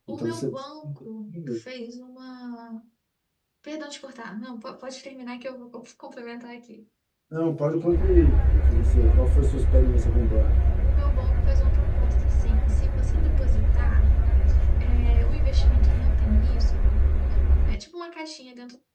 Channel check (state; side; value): identical; both; correlation 1.00